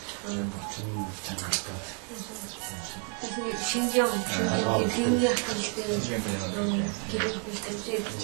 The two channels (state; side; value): quieter; left; 33.6 dB